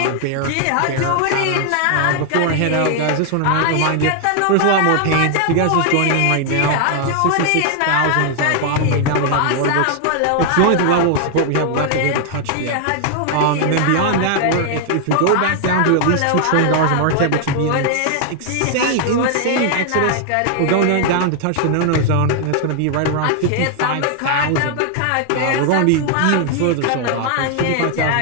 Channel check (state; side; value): different; both; correlation 0.00